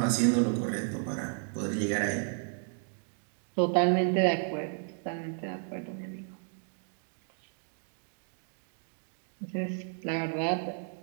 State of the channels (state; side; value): silent; left; 56 dB below the other